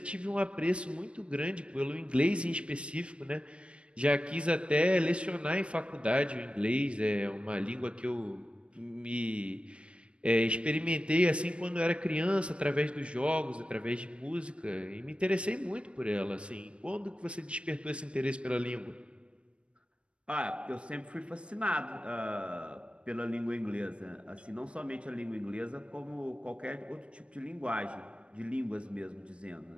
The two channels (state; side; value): late; left; 0.059 ms